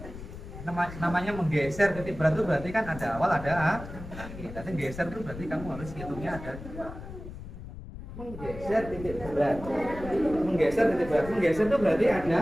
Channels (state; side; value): noise; left; rumble, 12 dB below the sound